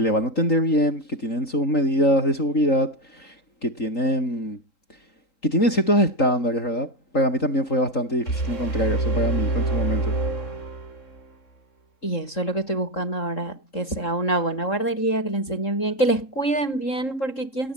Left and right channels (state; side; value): late; right; 3.7 ms